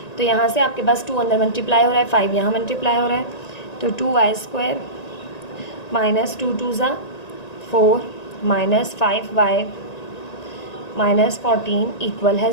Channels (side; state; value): right; late; 1.9 ms